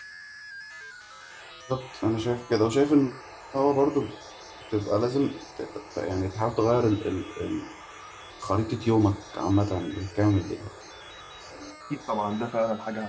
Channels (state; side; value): identical; both; correlation 1.00